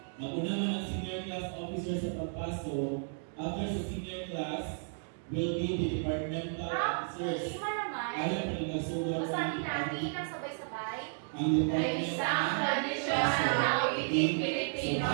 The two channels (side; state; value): left; silent; digital silence